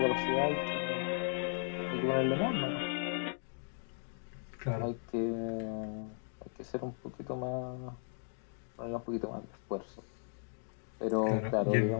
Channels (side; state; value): right; silent; 53 dB below the other